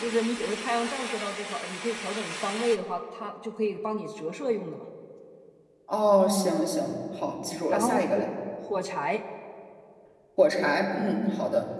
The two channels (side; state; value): both; identical; correlation 1.00